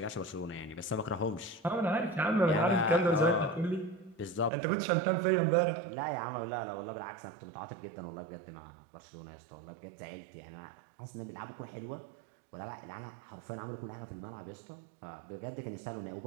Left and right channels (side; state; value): left; drops out; at 4.5 s